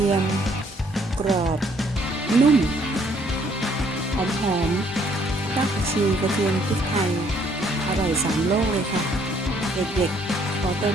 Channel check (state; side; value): normal; both; correlation 0.65